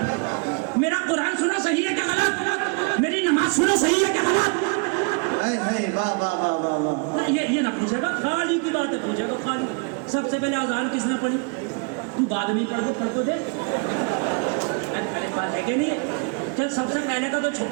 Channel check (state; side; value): quieter; left; 35.5 dB